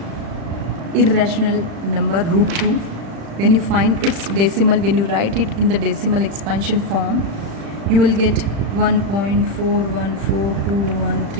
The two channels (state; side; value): late; left; 35 ms